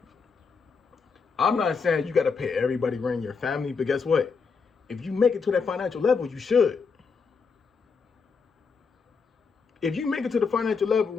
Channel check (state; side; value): quieter; right; 5.2 dB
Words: I'm not saying you got to pay everybody rent your family, but guess what? if you make it to that financial level, you should. If you make it to the financial